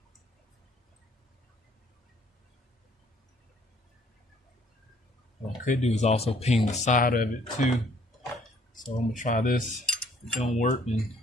What I could do is also ping the side of it too. So I'm gonna try this. If it don't work, then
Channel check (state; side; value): normal; both; correlation 0.61